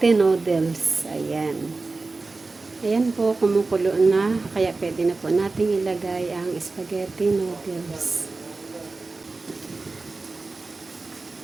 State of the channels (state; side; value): quieter; left; 3.7 dB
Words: noodles. Ayan. Ayan po, kumukulo na. Kaya pwede na po natin ilagay ang spaghetti noodles.